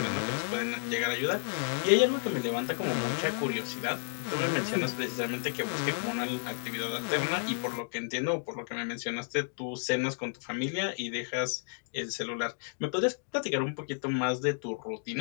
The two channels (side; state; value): right; silent; digital silence